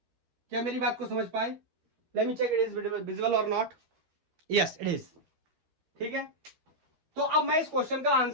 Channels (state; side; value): late; left; 13 ms